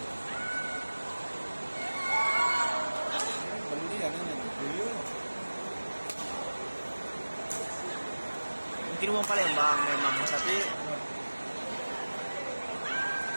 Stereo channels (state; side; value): inverted; both; correlation -1.00